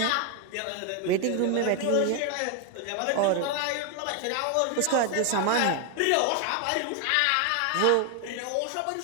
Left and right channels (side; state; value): both; different; correlation 0.01